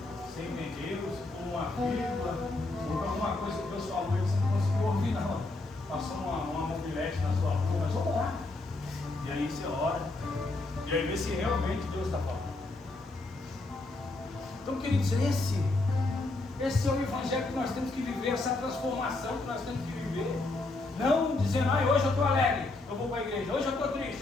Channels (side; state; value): right; quieter; 3.1 dB